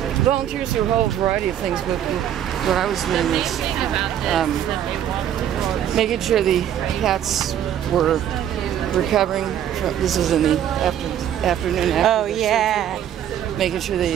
Volunteers do a whole variety of things, but what I was doing was making sure the cats were recovering. This is in the afternoon. Oh, yeah. Surgery, making sure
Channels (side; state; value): left; quieter; 10.4 dB